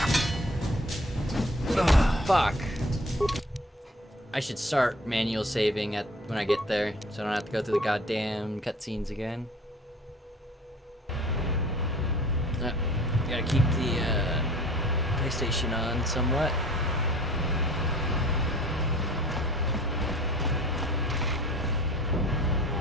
Fuck. I should start manual saving at when I get there, so I don't have to go through the goddamn cutscenes again. Gotta keep the PlayStation on somewhat.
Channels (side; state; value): both; normal; correlation 0.47